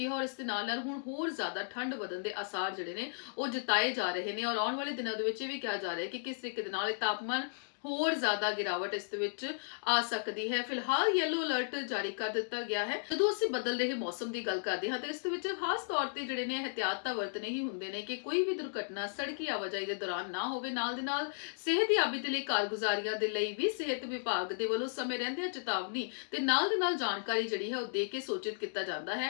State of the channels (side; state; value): right; silent; digital silence